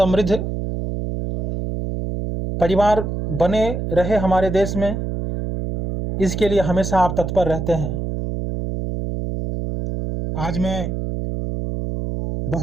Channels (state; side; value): noise; right; hum, 3 dB below the sound